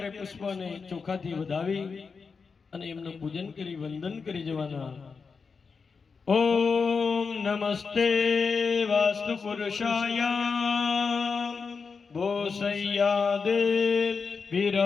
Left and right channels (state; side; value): quieter; right; 5.2 dB